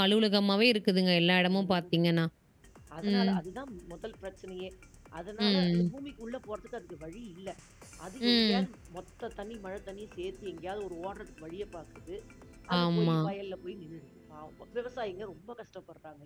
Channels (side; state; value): both; identical; correlation 1.00